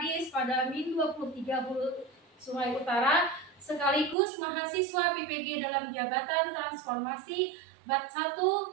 pada Min 23 Sungai Utara, sekaligus mahasiswa PPG dalam jabatan transformasi Bat 1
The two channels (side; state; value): left; drops out; at 4.2 s